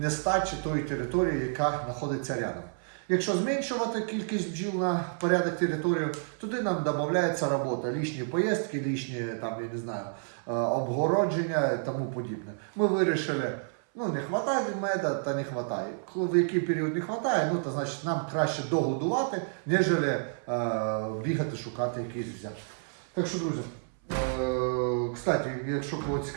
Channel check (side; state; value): left; silent; 58 dB below the other